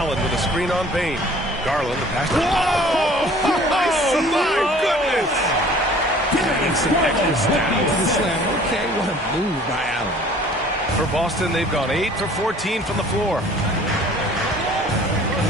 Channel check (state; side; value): normal; both; correlation 0.51